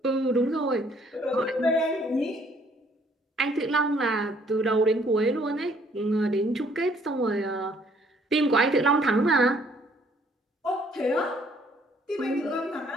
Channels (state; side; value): normal; both; correlation 0.63